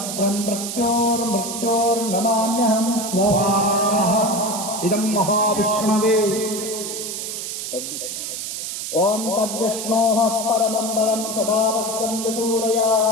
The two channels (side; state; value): right; noise; hiss, 5 dB below the sound